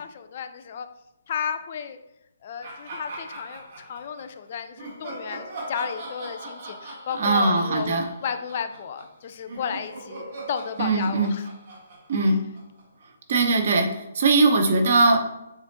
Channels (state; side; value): inverted; both; correlation -0.66